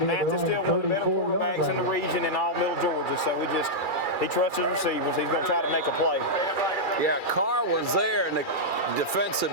Mathis still one of the better quarterbacks in the region in all middle Georgia. So he trusts his receivers. He's going to try to make a play. Yeah, Carr was there, and the defensive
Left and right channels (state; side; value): late; right; 2.3 ms